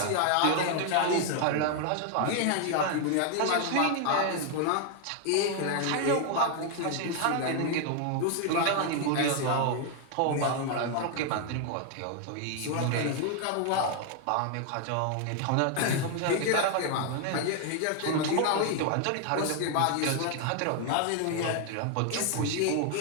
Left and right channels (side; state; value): both; different; correlation 0.00